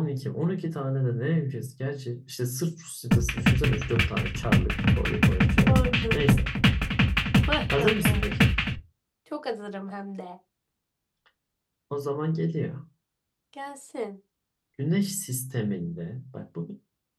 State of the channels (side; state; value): both; identical; correlation 1.00